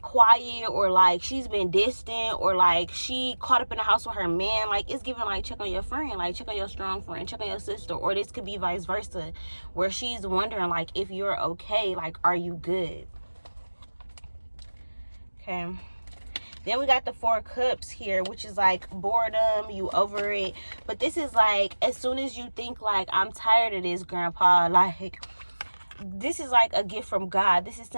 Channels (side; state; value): both; inverted; correlation -1.00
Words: or like she's been distant or like she caught up in the house with her man, like it's giving like check on your friend, like check on your strong friend, check on your sister. Or this could be vice versa, where she's wondering like if you're okay, like are you good? Okay. Then we got the 4 cups here, which is like boredom, you over it. But this is like, as soon as you think like, I'm tired of this, grandpa, like, this is like a gift from God. This is